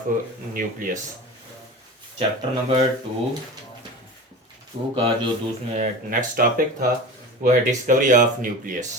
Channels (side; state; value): both; normal; correlation 0.32